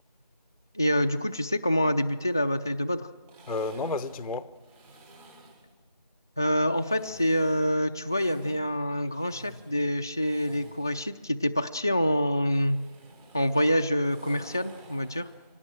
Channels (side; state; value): both; inverted; correlation -0.88